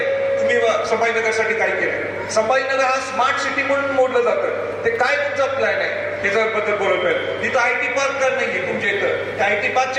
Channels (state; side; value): identical; both; correlation 1.00